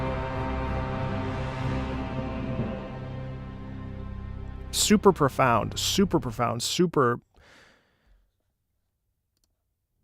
Super profound, super profound, super...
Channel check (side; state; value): both; identical; correlation 1.00